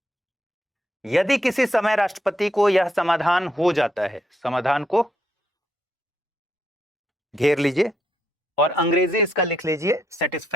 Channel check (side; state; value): both; normal; correlation 0.77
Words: यदि किसी समय राष्ट्रपति को यह समाधान हो जाता है, समाधान को घेर लीजिए और अंग्रेजी इसका लिख लीजिए